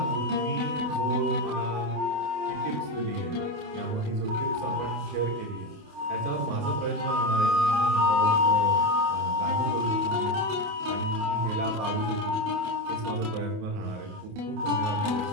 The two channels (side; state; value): left; late; 28 ms